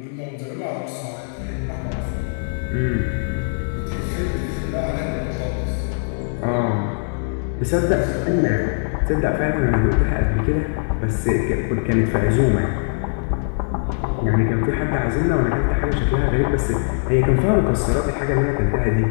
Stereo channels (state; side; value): silent; right; digital silence